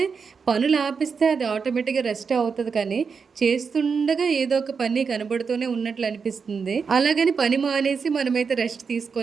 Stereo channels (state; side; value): quieter; left; 5.6 dB